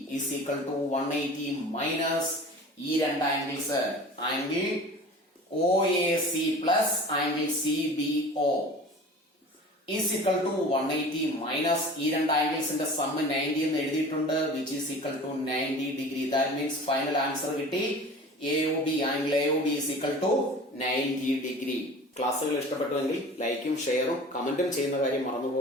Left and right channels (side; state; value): both; normal; correlation 0.40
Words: is equal to 180 minus ഈ 2 angles angle OAC plus angle CBO is equal to 180 minus ഈ 2 ആംഗിൾസിന്റെ സമ്മ് 90 എന്ന് എഴുതിയിട്ടുണ്ട് which is equal to 90 degree. That means final answer കിട്ടി angle AOB is equal to 90 degree. ക്ലാസ്സുകൾ ഇഷ്ടപ്പെട്ടുവെങ്കിൽ ലൈക്കും ഷെയറും കമന്റും ചെയ്യുന്ന കാര്യം മറന്നു